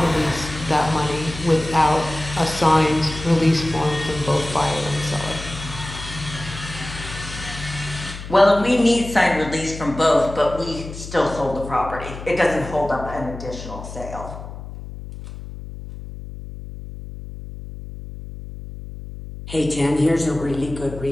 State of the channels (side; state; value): left; noise; hum, 11 dB below the sound